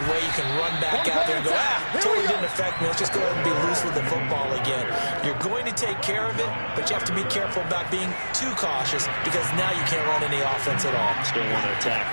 way you can run back out there and go, totally didn't affect me. Let's just go ahead and be loose with the football again. You're going to take care of it, but you have to be careful about being too cautious because now you can't run any offense at all. Still want to attack.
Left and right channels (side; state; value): both; inverted; correlation -1.00